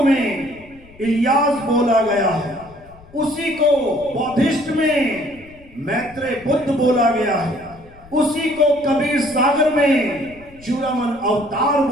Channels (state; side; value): noise; left; rumble, 24 dB below the sound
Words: में इलियास बोला गया है, उसी को बौद्धिस्ट में मैत्रेय बुद्ध बोला गया है, उसी को कबीर सागर में चूड़ामन अवतार